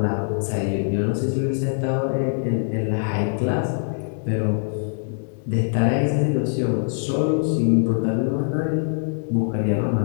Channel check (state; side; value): silent; right; digital silence